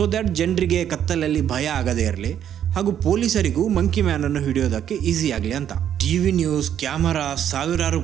ದಟ್ ಜನರಿಗೆ ಕತ್ತಲಲ್ಲಿ ಭಯ ಆಗದೇ ಇರಲಿ ಹಾಗೂ ಪೊಲೀಸರಿಗೂ ಮಂಕಿ ಮ್ಯಾನ್ ಅನ್ನು ಹಿಡಿಯೋದಕ್ಕೆ ಈಸಿ ಆಗಲಿ ಅಂತ. ಟಿವಿ ನ್ಯೂಸ್, ಕ್ಯಾಮರಾ, ಸಾವಿರಾರು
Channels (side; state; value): left; quieter; 9.9 dB